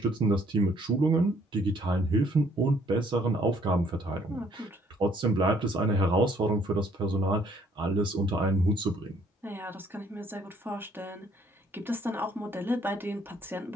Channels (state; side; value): normal; both; correlation 0.64